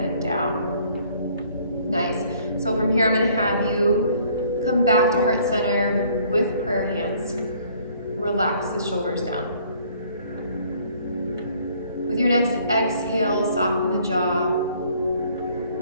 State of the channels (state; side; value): inverted; both; correlation -0.60